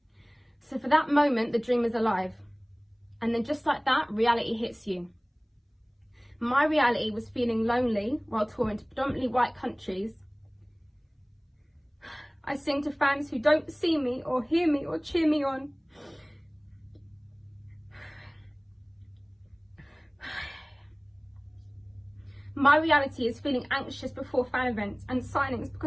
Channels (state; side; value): identical; both; correlation 1.00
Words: So for that moment, the dream is alive. And then just like that, reality hits you. My reality was feeling lonely while touring to predominantly white countries. I sing to fans who don't see me or hear me or cheer me on. My reality is feeling anxious before fan events and signings